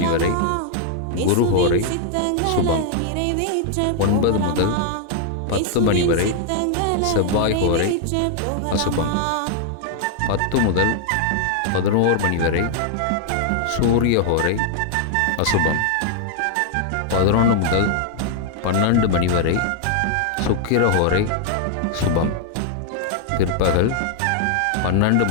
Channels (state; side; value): different; both; correlation 0.00